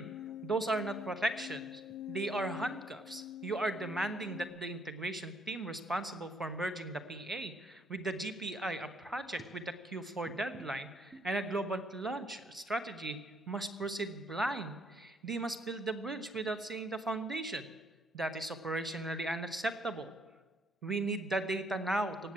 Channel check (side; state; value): both; normal; correlation 0.68